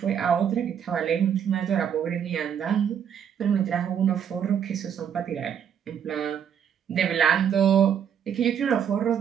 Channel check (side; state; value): left; quieter; 8.4 dB